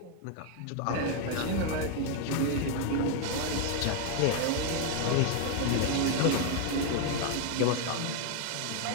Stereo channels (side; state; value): both; different; correlation 0.00